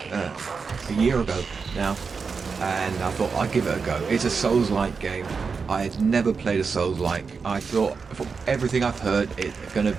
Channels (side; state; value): left; quieter; 5.2 dB